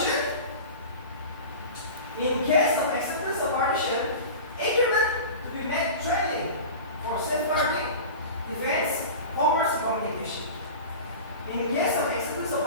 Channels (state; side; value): inverted; both; correlation -0.33